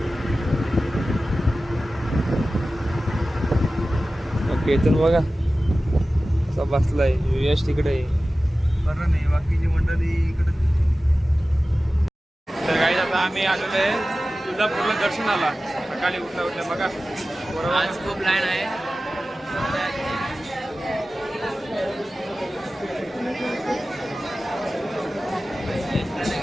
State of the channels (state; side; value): normal; both; correlation 0.95